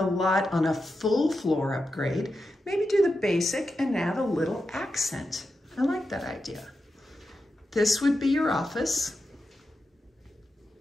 lot on a full floor upgrade, maybe do the basic and add a little accent. I like that idea. This would be your office.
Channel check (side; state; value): both; normal; correlation 0.89